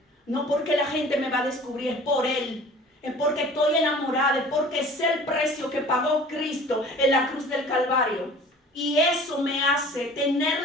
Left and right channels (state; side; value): normal; both; correlation 0.46